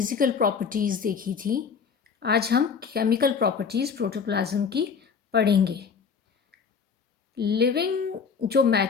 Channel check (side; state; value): right; quieter; 6.0 dB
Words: प्रॉपर्टीज़ देखी थी। आज हम केमिकल प्रॉपर्टीज़ प्रोटोप्लाज्म की पढ़ेंगे। लिविंग जो